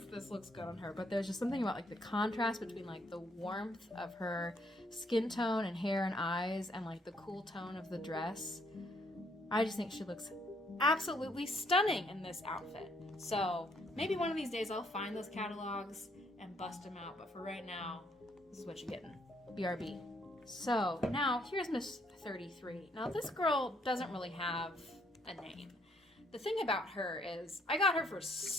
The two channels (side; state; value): both; normal; correlation 0.69